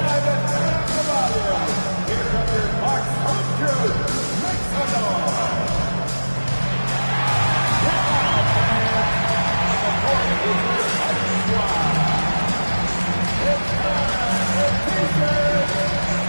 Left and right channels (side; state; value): both; inverted; correlation -1.00